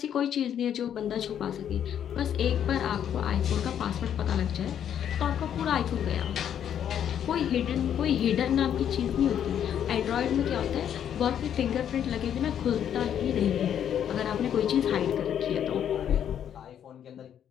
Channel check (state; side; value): quieter; right; 9.4 dB